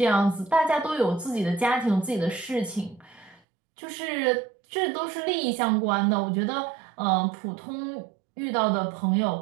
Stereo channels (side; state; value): left; drops out; at 3.4 s